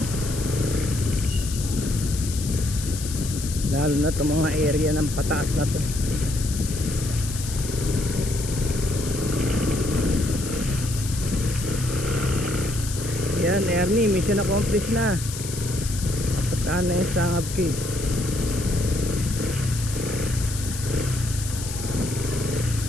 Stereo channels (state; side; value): noise; left; hiss, 9 dB below the sound